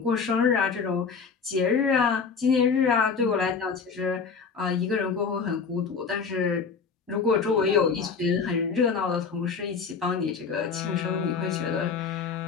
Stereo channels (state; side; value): quieter; right; 5.5 dB